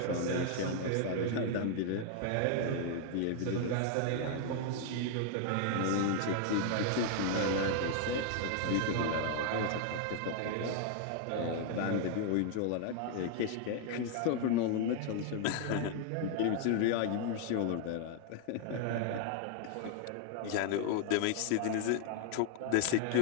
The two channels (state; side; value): different; both; correlation 0.00